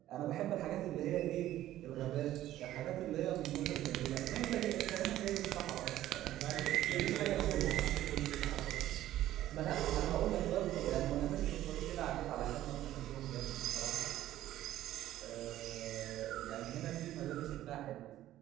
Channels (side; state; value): left; quieter; 13.7 dB